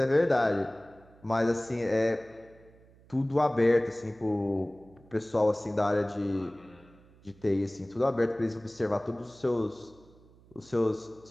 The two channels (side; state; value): right; noise; hum, 26 dB below the sound